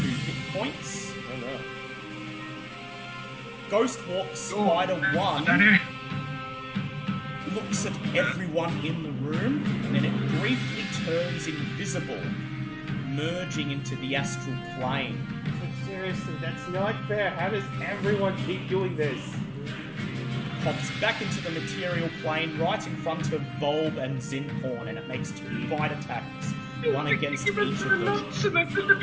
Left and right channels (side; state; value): both; identical; correlation 1.00